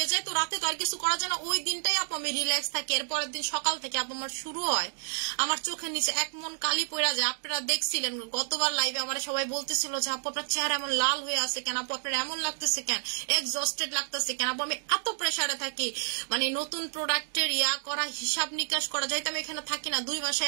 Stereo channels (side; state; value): left; silent; digital silence